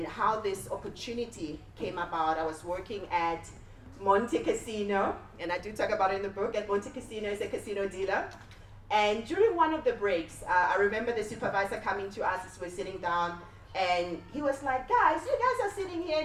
how this opportunity came about, I was working at Monte Casino, and I do talk about it in the book. At Monte Casino is a casino dealer. And during one of the breaks, I remember the supervisor coming to us as we're sitting down, and he was like, guys, you guys are sitting here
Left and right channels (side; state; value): both; identical; correlation 1.00